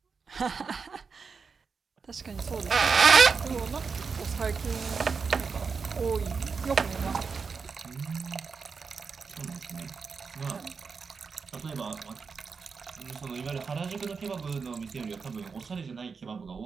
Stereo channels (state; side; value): quieter; left; 5.3 dB